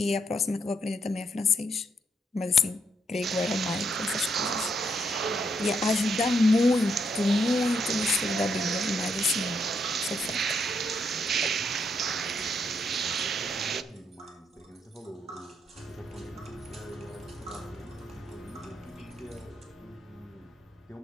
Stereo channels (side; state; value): both; normal; correlation 0.76